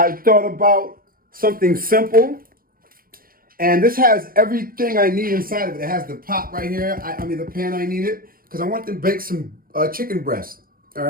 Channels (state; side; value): late; left; 0.42 ms